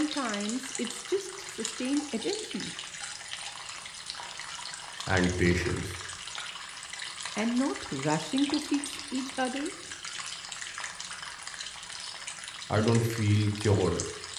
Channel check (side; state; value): both; identical; correlation 1.00